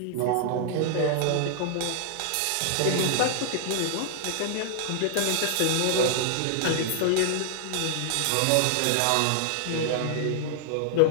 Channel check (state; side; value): different; both; correlation 0.00